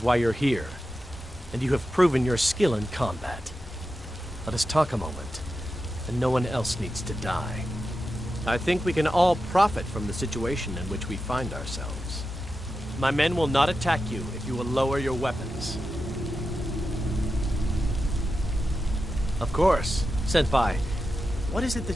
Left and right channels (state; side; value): normal; both; correlation 0.90